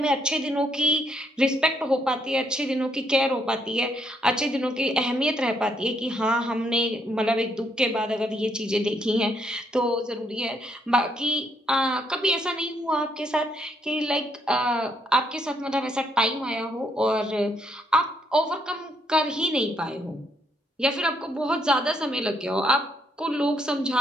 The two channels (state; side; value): normal; both; correlation 0.73